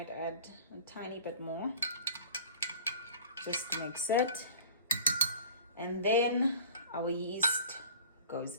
add a tiny bit more. Just mix it. And then our yeast goes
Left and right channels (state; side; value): inverted; both; correlation -0.43